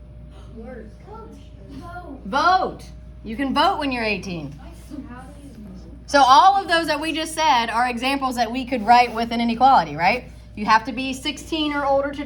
Work. Vote. vote. You can vote when you're 18. How do you So all of those that we just said are examples that we could write with an inequality, right? You have to be 16 or older to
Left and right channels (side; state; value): both; identical; correlation 1.00